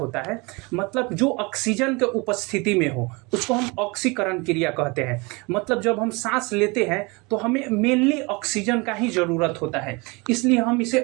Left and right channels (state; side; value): quieter; left; 27.0 dB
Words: है? मतलब जो ऑक्सीजन के उपस्थिति में हो उसको हम ऑक्सीकरण क्रिया कहते हैं। मतलब जब हम सांस लेते हैं तो हमें मेनली ऑक्सीजन का ही जरूरत होता है, इसलिए हम इसे